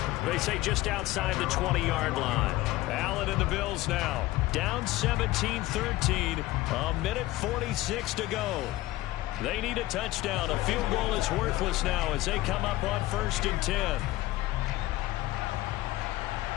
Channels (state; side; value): quieter; right; 17.6 dB